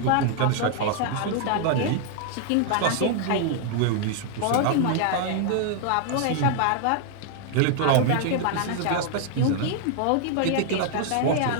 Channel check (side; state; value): both; different; correlation 0.00